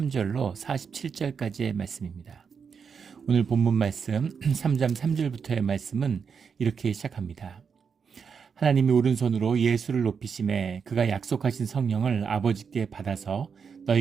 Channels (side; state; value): left; quieter; 6.2 dB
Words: 47절까지의 말씀입니다. 오늘 본문 말씀 3장 3절부터의 말씀은 이렇게 시작합니다. 하나님이 오른손으로 예수를 높이심에 그가 약속하신 성령을 아버지께 받아서